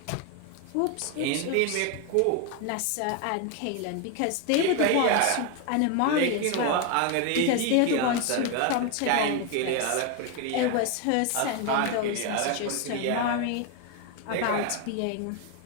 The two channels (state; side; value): different; both; correlation 0.01